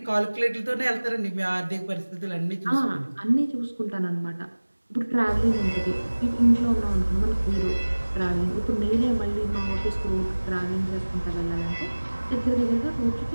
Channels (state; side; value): inverted; both; correlation -1.00